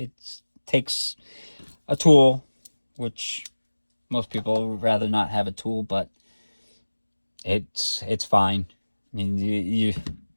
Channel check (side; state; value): both; inverted; correlation -1.00